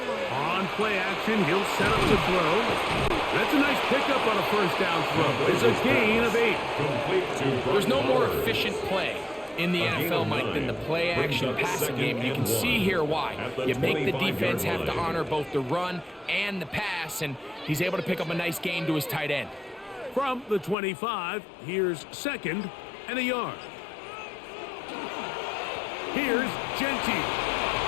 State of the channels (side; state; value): right; drops out; at 20.8 s